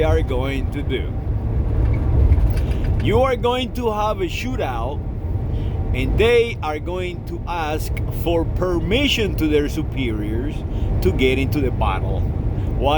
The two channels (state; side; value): identical; both; correlation 1.00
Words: are going to do. You are going to have a shootout, and they are going to ask for permission to their superiors to get into the battle